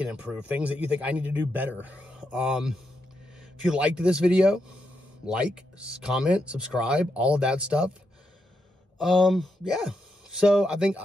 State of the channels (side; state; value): both; normal; correlation 0.83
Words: improve, things that you think I need to do better. If you liked this video, like, comment, subscribe, all of that stuff. Yeah. So I think